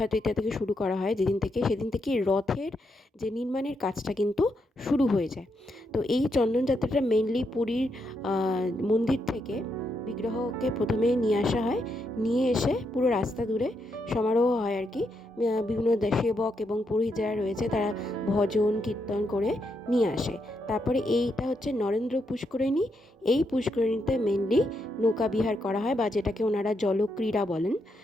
তৃতীয়া থেকে শুরু করা হয় যেদিন থেকে, সেদিন থেকে রথের যে নির্মাণের কাজটা কিন্তু শুরু হয়ে যায়। তো এই চন্দন যাত্রাটা মেইনলি পুরীর মন্দির থেকে বিগ্রহকে প্রথমে নিয়ে আসা হয়, নিয়ে এসে পুরো রাস্তা দূরে সমারোহ হয় আর কি। বিভিন্ন সেবক এবং পুরোহিত যারা রয়েছে তারা ভজন কীর্তন করে নিয়ে আসে। তারপরে এইটা হচ্ছে নরেন্দ্র পুষ্করিণী। এই পুষ্করিণীতে মেনলি নৌকা বিহার করা হয়, বা যেটাকে ওনারা জলক্রীড়া বলেন।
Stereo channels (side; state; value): both; normal; correlation 0.81